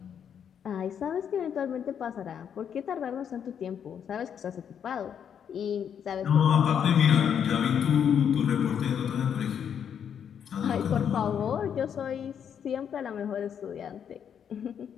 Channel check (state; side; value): quieter; right; 8.2 dB